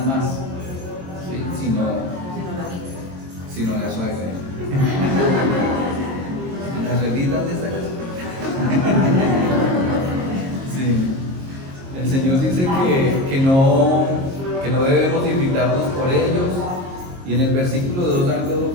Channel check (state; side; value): late; left; 22 ms